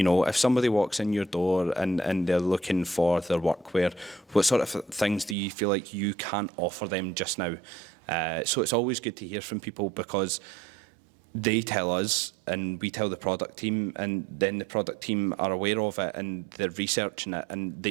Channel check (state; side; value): drops out; left; at 5.4 s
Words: somebody walks in your door and they're looking for their workwear, what sort of things do you feel like you can't offer them just now? So it's always good to hear from people, because they tell us and we tell the product team, and then the product team are aware of it and they're researching it, and